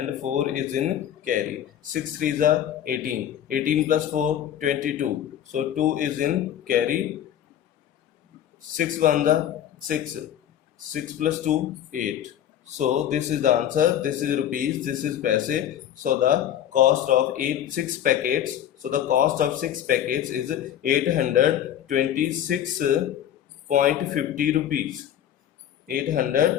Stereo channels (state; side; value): quieter; right; 10.7 dB